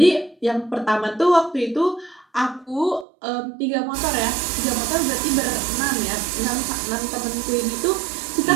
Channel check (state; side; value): drops out; left; at 3.1 s